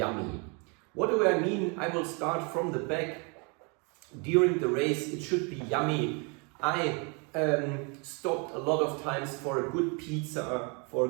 What do I mean? I will start from the back. During the race, it should be yummy. I stopped a lot of times for a good pizza, for a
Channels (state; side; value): quieter; left; 33.4 dB